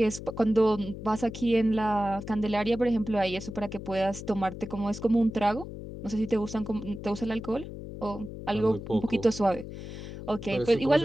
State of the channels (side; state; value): left; noise; hum, 10 dB below the sound